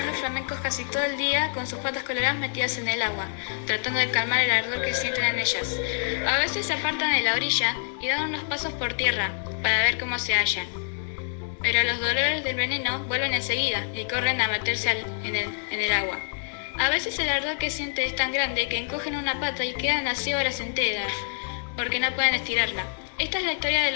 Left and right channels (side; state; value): right; silent; digital silence